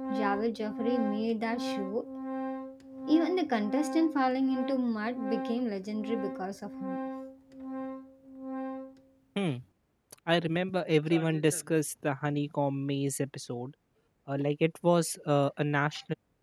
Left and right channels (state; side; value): identical; both; correlation 1.00